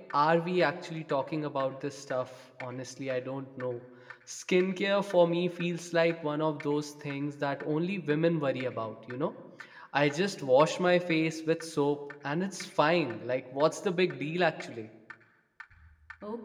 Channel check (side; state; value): both; identical; correlation 1.00